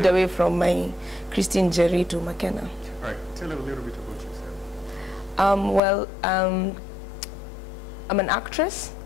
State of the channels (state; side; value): drops out; right; at 5.8 s